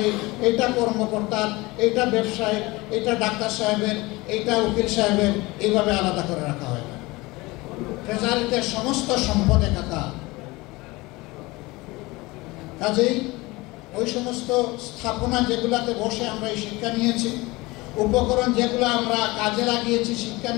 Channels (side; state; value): right; quieter; 22.2 dB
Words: এইটা কর্মকর্তার, এইটা ব্যবসায়ী, এইটা ডাক্তার সাহেবের, এইটা উকিল সাহেবের, এইভাবে আলাদা করে রাখা হয় না। ট্রেজারিতে সমস্ত সম্পদ একাকার। কাজেই ওই সমস্ত স্থাপনা যেগুলাতে বসে আমরা এই শিক্ষা নিয়েছি, উপকরণ যেগুলো আমরা কাজে লাগিয়েছি শিক্ষা